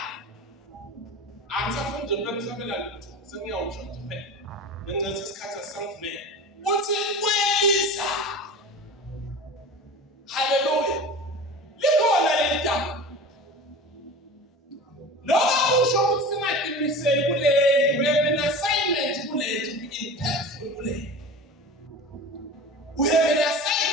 Angisafunda ukusabela lutho. Sengiyawusho nje phela. Ngenxa isikhathi asangivumela. Uthi kweliza. Hallelujah. Likhona leli gama. Noma usho ukuthi singaqiniseli kuleli, we have an assignment kuleli to be impactful kuleli. We have an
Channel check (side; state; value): both; normal; correlation 0.34